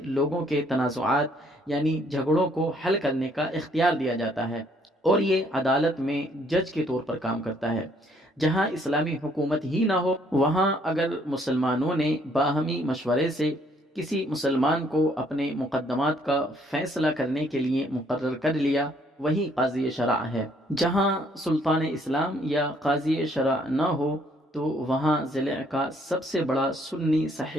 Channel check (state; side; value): normal; both; correlation 0.65